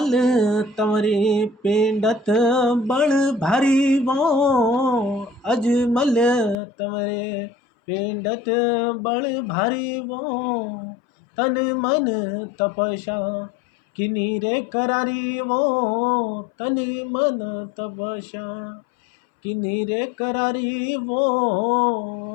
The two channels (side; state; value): right; drops out; at 6.6 s